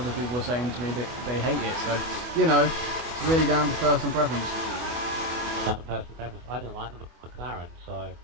people were saying to me that they hate it. So, you know, it's really down to personal preference. Personal preference. I don't like the McLaren, so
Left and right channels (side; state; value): left; late; 24 ms